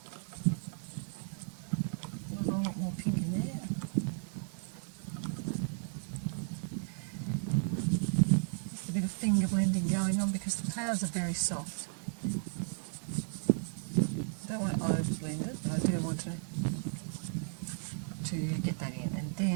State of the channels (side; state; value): left; silent; 55 dB below the other